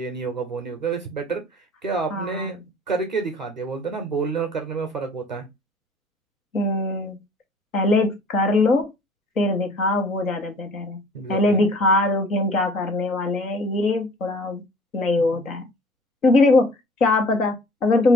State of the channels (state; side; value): normal; both; correlation 0.50